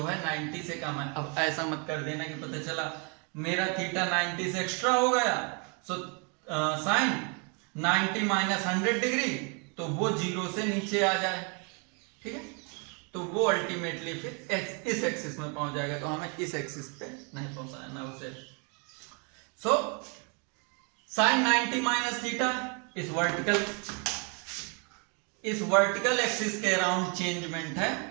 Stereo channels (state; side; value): quieter; left; 35.5 dB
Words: है 90 से कम है। अब ऐसा मत कर देना कि पता चला मेरा थीटा 90 से एक्स्ट्रा हो गया, सो साइन 90 माइनस 100 डिग्री, तो वो 0 से नीचे आ जाए। ठीक है, तो वो अल्टीमेटली फिर इस एक्सिस में पहुंच जाएगा, तो हमें इस एक्सिस पे नहीं पहुंचाना उसे। सो साइन 90 माइनस थीटा इस वर्टिकल एक्सिस के अराउंड चेंजमेंट